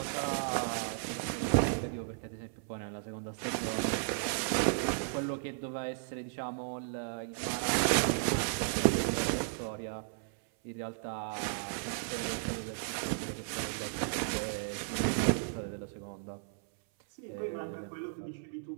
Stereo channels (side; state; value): left; silent; 55 dB below the other